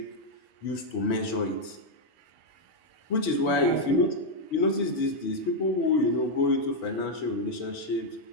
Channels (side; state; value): right; late; 4.8 ms